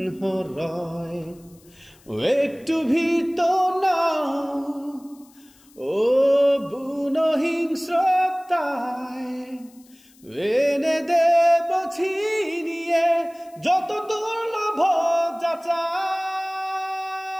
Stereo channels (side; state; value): left; noise; hiss, 29 dB below the sound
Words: রয়। একটু ভীত না ও বুনো হিংস্রতায়, এনে দেব ছিনিয়ে যত দুর্লভ যাচাই।